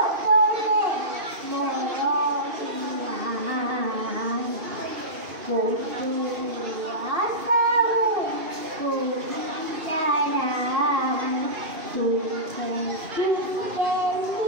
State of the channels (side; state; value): left; late; 2.5 ms